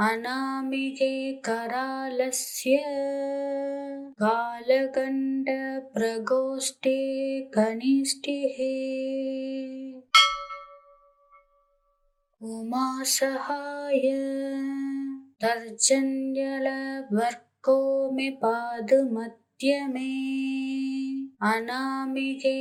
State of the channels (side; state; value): both; identical; correlation 1.00